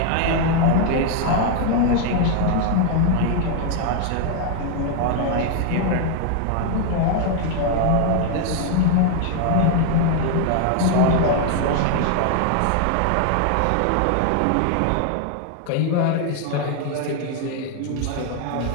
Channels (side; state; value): both; different; correlation 0.00